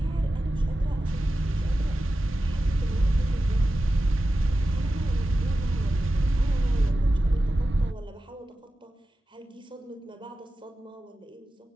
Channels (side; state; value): both; normal; correlation 0.93